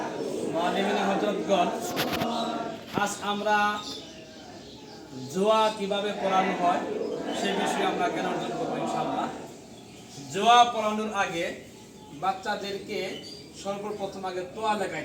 মুআল্লিমিন হযরতগণ, আজ আমরা জুয়া কিভাবে পড়ানো হয় সেই বিষয়ে আমরা জ্ঞান অর্জন করবো ইনশাআল্লাহ। জুয়া পড়ানোর আগে বাচ্চাদেরকে সর্বপ্রথম আগে তোয়া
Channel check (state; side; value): identical; both; correlation 1.00